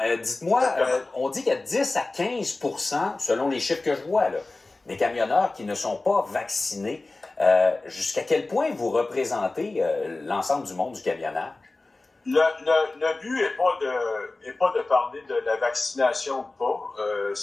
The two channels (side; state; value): right; quieter; 3.2 dB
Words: Dites-moi, on dit qu'il y a 10 à 15 % selon les chiffres que je vois, là, des camionneurs qui ne sont pas vaccinés. Jusqu'à quel point vous représentez l'ensemble du monde du camionnage? Le but n'est pas de parler de la vaccination ou pas.